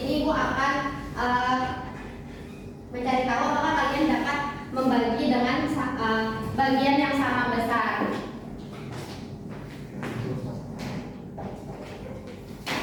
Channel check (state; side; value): identical; both; correlation 1.00